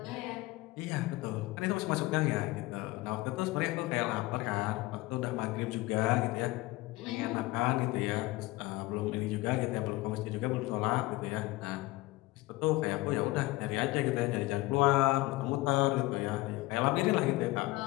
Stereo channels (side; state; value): right; quieter; 20.3 dB